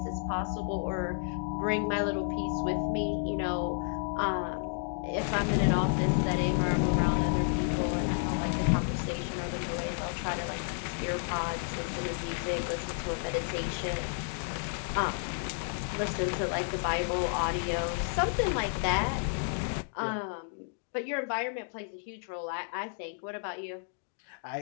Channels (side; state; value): right; silent; 57 dB below the other